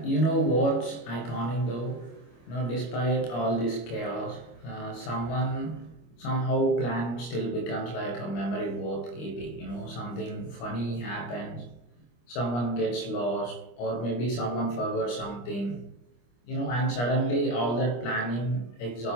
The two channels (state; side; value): late; right; 25 ms